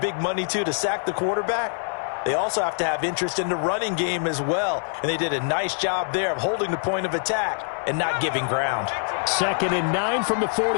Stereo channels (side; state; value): right; silent; digital silence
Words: money to sack the quarterback, they also have to have interest in the running game as well. And they did a nice job there of holding the point of attack and not giving ground. 2nd and 9 from the